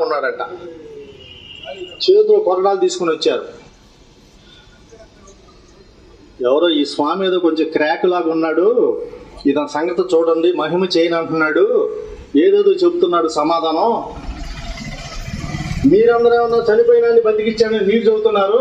ఉన్నాడట. చేతిలో కొరడాలు తీసుకుని వచ్చారు. ఎవరో ఈ స్వామి ఏదో కొంచెం క్రాక్ లాగా ఉన్నాడు, ఇతని సంగతి చూడండి, మహిమ చేయని అంటున్నాడు, ఏదేదో చెబుతున్నాడు సమాధానం. మీరందరూ ఏమన్నా చనిపోయినా బతికిచ్చానని మీరు చెబుతున్నారు.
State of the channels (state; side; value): identical; both; correlation 1.00